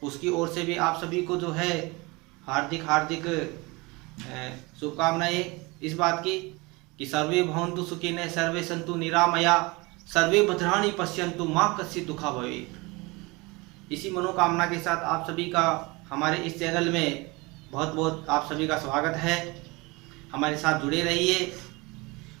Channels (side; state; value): left; quieter; 25.0 dB